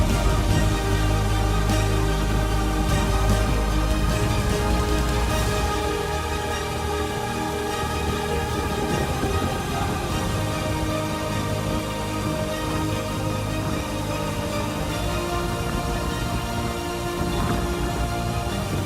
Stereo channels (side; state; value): both; identical; correlation 1.00